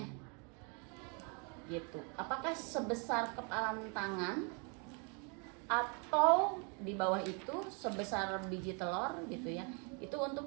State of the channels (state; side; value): quieter; left; 35.4 dB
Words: gitu apakah sebesar kepalan tangan atau di bawah itu sebesar biji telur gitu ya itu